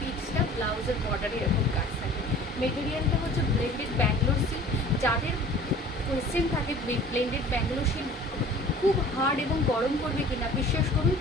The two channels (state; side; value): normal; both; correlation 0.46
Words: ব্লাউজের বর্ডারে এরকম কাজ থাকে। মেটেরিয়ালটা হচ্ছে ব্লেন্ডেড ব্যাঙ্গালোর সিল্ক। যাদের কোয়েশ্চেন থাকে ব্লেন্ডেড ব্যাঙ্গালোর সিল্ক খুব হার্ড এবং গরম করবে কিনা, বিশ্বাস করুন